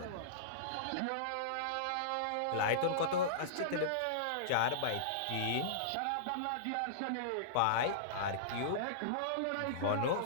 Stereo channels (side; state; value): both; different; correlation -0.03